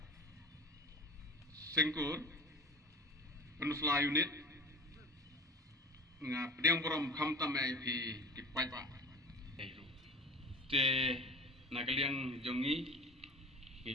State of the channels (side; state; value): both; normal; correlation 0.37